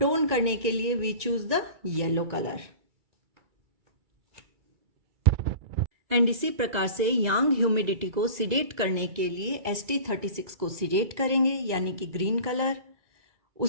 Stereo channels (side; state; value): left; late; 2.3 ms